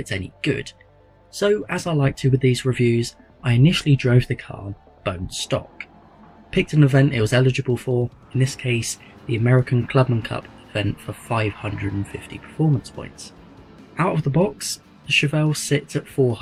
any good. So as I like to with these reviews, I initially drove the car bone stock. Picked an event it was eligible for, in this case the American Clubman Cup event for 550 performance points. Out of the box, the Chevelle sits at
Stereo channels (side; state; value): both; identical; correlation 1.00